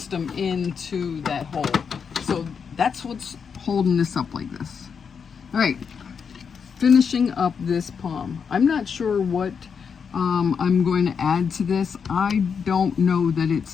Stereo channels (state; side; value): quieter; right; 6.4 dB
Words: into that hole. So that's what's holding this up like this. All right, finishing up this palm. I'm not sure what I'm going to add to this. I don't know that it's